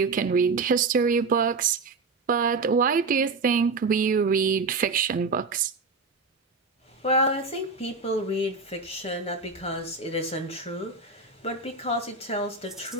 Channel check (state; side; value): quieter; left; 4.0 dB